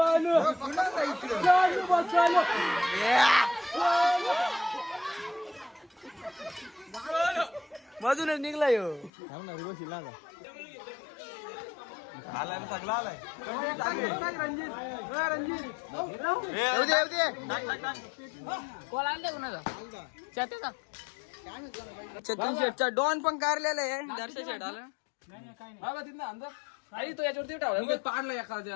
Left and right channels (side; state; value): right; drops out; at 9.1 s